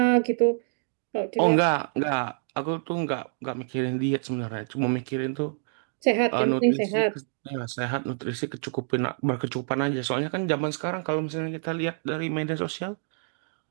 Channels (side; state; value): left; silent; digital silence